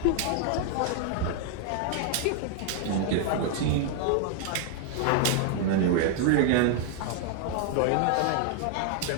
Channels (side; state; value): both; different; correlation 0.00